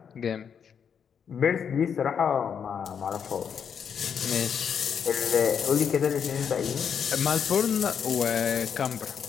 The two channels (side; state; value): right; quieter; 7.4 dB